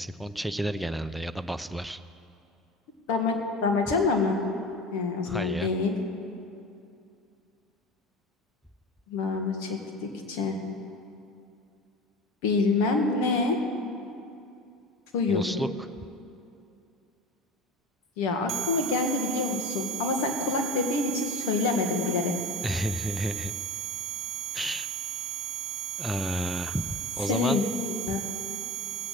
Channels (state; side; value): normal; both; correlation 0.33